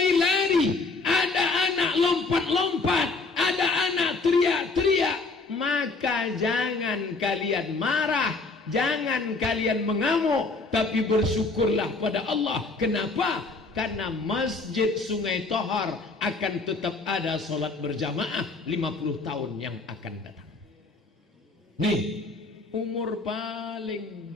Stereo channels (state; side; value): quieter; right; 3.7 dB